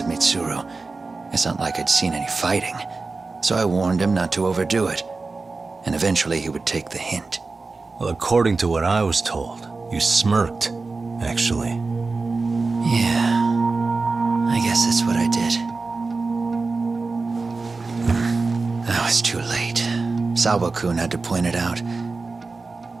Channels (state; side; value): quieter; left; 3.9 dB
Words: Mitsuru. It's not like I'd seen any fighting, so I warned him not to overdo it, and eventually he would take the hint. Well, according to what I was told, you smirked, actually. Yeah, I guess that's what I did. That was too late. Sawa-kun had to point it out.